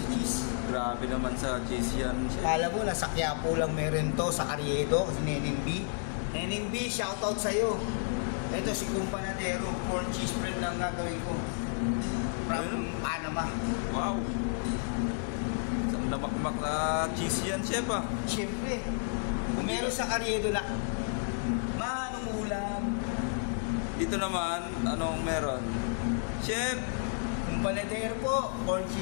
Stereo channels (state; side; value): silent; right; digital silence